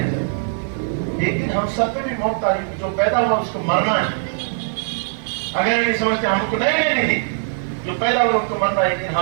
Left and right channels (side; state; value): left; silent; digital silence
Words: ایک دن ہم سب پہ بھی موت آئی، جو پیدا ہوا اس کو مرنا ہے، اگر نہیں سمجھتے ہم کو نہیں لینی تھی، جو پیدا ہوا اس کو مرنا ہے، ایک دن